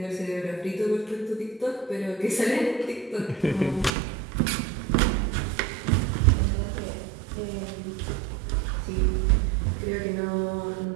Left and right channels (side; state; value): left; drops out; at 3.9 s